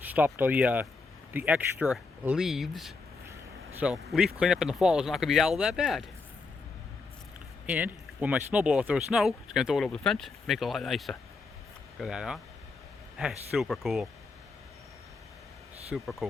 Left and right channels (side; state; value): right; quieter; 4.1 dB